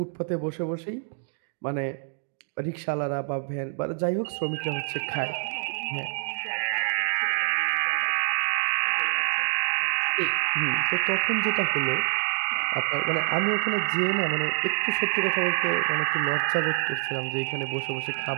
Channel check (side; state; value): left; silent; 59 dB below the other